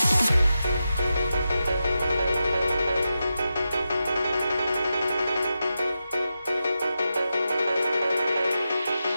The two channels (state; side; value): inverted; both; correlation -0.90